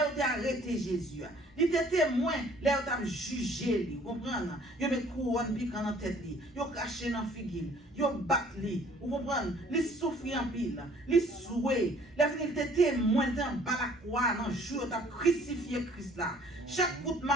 où il a arrêté Jésus. Il était témoin, là où il a jugé. Vous comprenez? Il a mis couronne piquant dans la tête. Il a caché dans la figure. Il a battu. Vous comprenez? Il souffre en pile. Il souhait. Il était témoin dans la croix, dans le jour où il a crucifié Christ là. Chaque coup de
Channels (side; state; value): both; normal; correlation 0.56